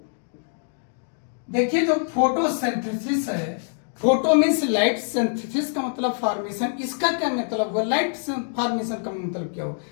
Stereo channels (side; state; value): right; silent; digital silence